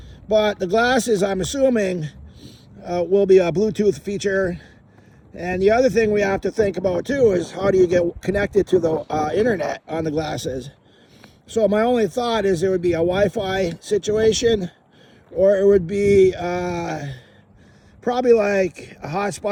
But the glasses, I'm assuming, will be a Bluetooth feature. And the other thing we have to think about too is how do you get connected to the internet on the glasses. So my only thought is there would be a Wi-Fi situation, or it would be probably like a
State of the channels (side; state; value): both; identical; correlation 1.00